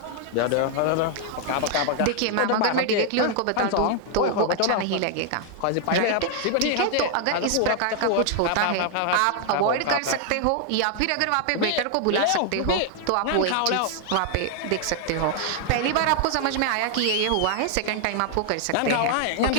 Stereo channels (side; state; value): both; different; correlation 0.00